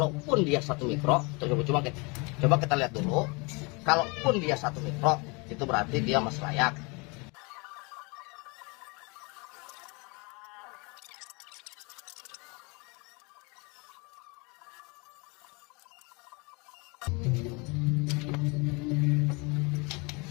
dia 1 mikro, coba kita lihat dulu. Kalaupun dia 1 mikro, itu berarti dia masih layak.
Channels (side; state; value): right; quieter; 29.1 dB